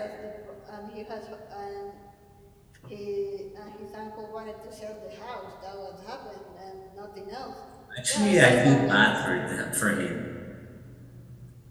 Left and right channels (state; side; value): identical; both; correlation 1.00